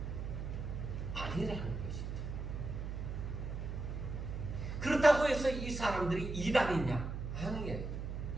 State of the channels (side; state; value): right; noise; hum, 5 dB below the sound